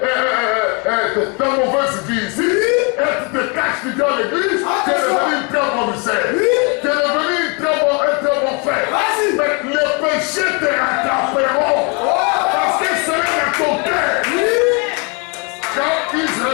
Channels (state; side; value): quieter; right; 33.1 dB